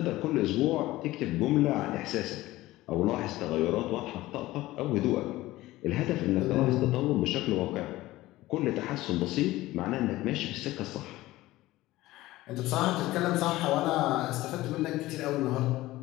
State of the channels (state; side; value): quieter; right; 17.4 dB